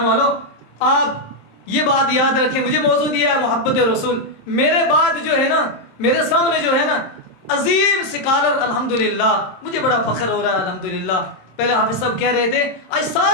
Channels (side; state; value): right; late; 26 ms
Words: والو، آپ یہ بات یاد رکھیں، مجھے موضوع دیا ہے محبت رسول. میرے بعد جو ہے نا، میرے سامنے جو ہے نا عظیم سکالر، الحمدللہ مجھے بڑا فخر ہو رہا ہے الحمدللہ. پہلے حافظ صاحب کہہ رہے تھے آج